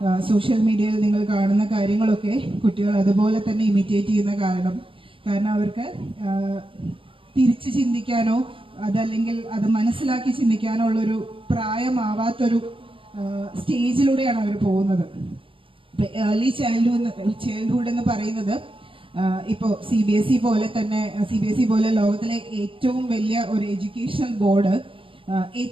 സോഷ്യൽ മീഡിയയിൽ നിങ്ങൾ കാണുന്ന കാര്യങ്ങളൊക്കെ കുട്ടികൾ അതുപോലെ തന്നെ ഇമിറ്റേറ്റ് ചെയ്യുന്ന കാരണം അവർക്ക് തിരിച്ച് ചിന്തിക്കാനോ അതല്ലെങ്കിൽ അത് മനസ്സിലാക്കി ചിന്തിക്കാനോ ഉള്ളൊരു പ്രായമാവാത്തൊരു സ്റ്റേജിലൂടെയാണ് അവർ പോകുന്നത്. ഏർലി ചൈൽഡ്ഹുഡ് എന്ന് പറയുന്നത് ഇപ്പോൾ CBSE പോലെ ലോകത്തിലെ ഏറ്റവും വലിയ ഒരു എഡ്യൂക്കേഷൻ ബോർഡ്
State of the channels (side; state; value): left; late; 0.25 ms